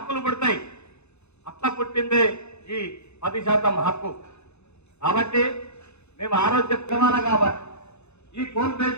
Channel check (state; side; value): late; right; 0.81 ms